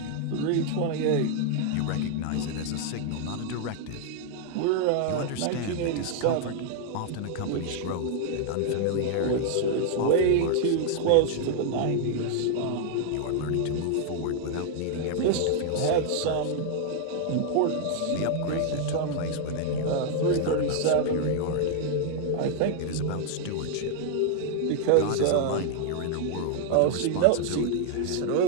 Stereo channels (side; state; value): both; different; correlation 0.00